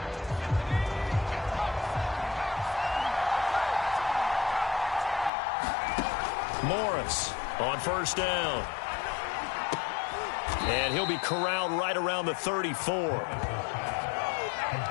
Morris on first down. And he'll be corralled right around the 34.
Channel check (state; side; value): drops out; right; at 5.3 s